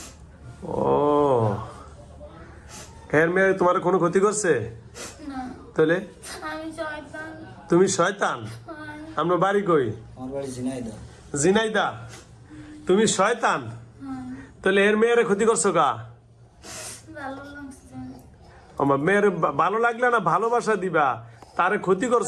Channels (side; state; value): both; identical; correlation 1.00